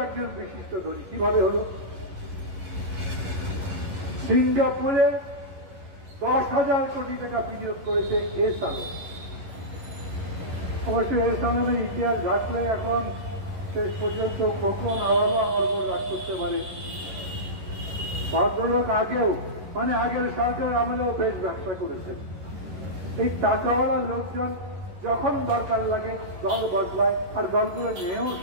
একজন বিশিষ্ট ধনী। কিভাবে হলো? সিঙ্গাপুরে 10,000 কোটি টাকা বিনিয়োগ করেছে এসালন। অবশ্য এসালনের ইতিহাস ঘাটলে এখন শেষ পর্যন্ত খোকন আবারও আমার উপর রাগ করতে পারে। ভদ্রলোক আগেও, মানে আগের সরকার আমলেও বেশ ব্যবসা করেছেন। এই টাকাওয়ালা লোকজন যখন দরকার লাগে দল বদলায়, আর দলগুলো নেও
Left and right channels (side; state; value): left; late; 11 ms